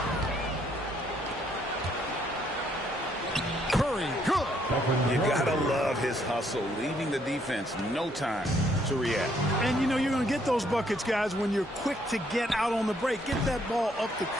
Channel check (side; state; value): both; normal; correlation 0.69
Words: Curry, good. You gotta love his hustle, leaving the defense no time to react. And you know you're going to get those buckets, guys, when you're quick to get out on the break. Get that ball up the